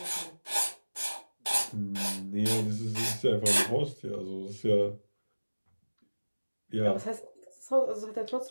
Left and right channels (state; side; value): inverted; both; correlation -1.00